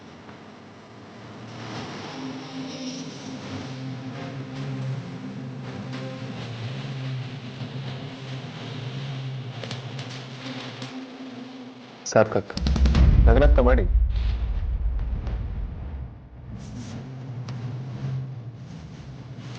ಸಾರ್ಥಕ್, ನಗನಗ್ತ ಮಾಡಿ.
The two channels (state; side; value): identical; both; correlation 1.00